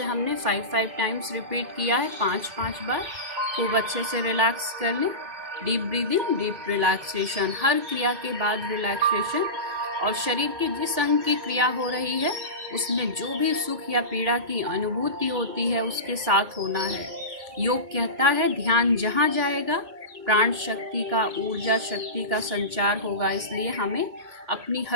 हमने 5 टाइम्स रिपीट किया है, 5 बार। खूब अच्छे से रिलैक्स कर लें। डीप ब्रीदिंग, डीप रिलैक्सेशन, हर क्रिया के बाद रिलैक्सेशन। और शरीर के जिस अंग की क्रिया हो रही है उसमें जो भी सुख या पीड़ा की अनुभूति होती है उसके साथ होना है। योग कहता है ध्यान जहाँ जाएगा प्राण शक्ति का, ऊर्जा शक्ति का संचार होगा, इसलिए हमें अपनी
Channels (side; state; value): left; late; 2.4 ms